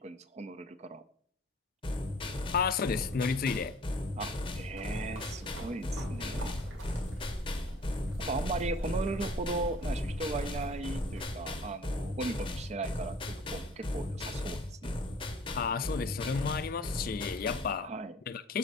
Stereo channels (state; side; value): normal; both; correlation 0.50